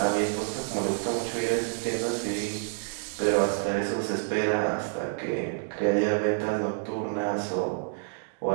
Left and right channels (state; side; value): silent; left; digital silence